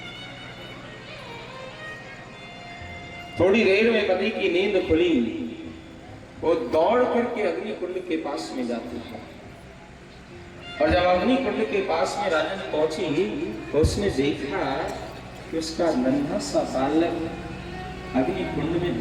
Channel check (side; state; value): both; identical; correlation 1.00